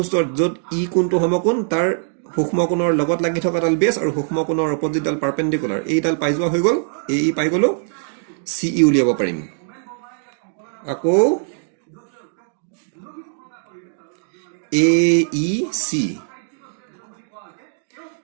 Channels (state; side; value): silent; left; digital silence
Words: যত E কোণটো সমকোণ তাৰ সূক্ষ্ম কোণৰ লগত লাগি থকা ডাল বেস আৰু সূক্ষ্ম কোণৰ অপজিটডাল পাৰপেন্ডিকুলাৰ এইডাল পাই যোৱা হৈ গল AE পাই গলো CE উলিয়াব পাৰিম আকৌ AEC